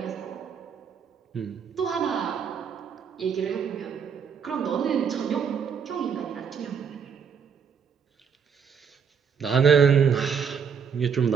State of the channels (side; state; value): left; quieter; 6.9 dB